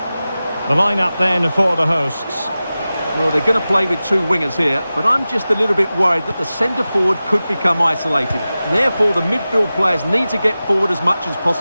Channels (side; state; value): both; inverted; correlation -0.95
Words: The lineup then for the hosts. Well, they're going to play with two wingers here, but I'm just a little bit worried that the centre-forward could become isolated. Therefore, the midfield players need to get forward as much as